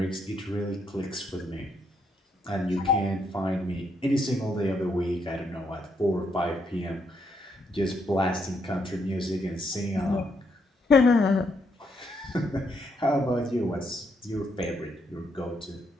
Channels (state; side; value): normal; both; correlation 0.76